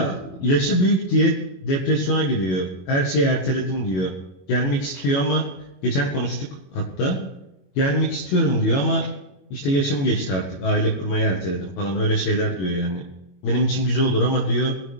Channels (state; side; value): late; right; 21 ms